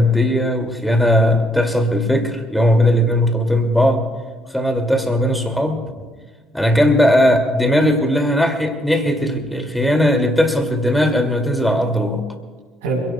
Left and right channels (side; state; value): both; normal; correlation 0.72